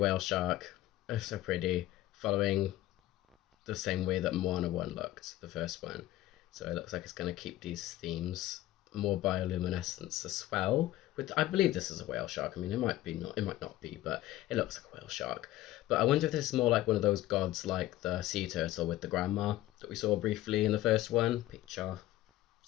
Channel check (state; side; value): quieter; right; 15.4 dB